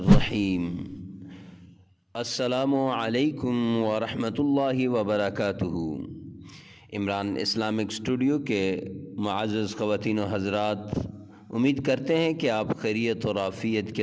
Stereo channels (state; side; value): identical; both; correlation 1.00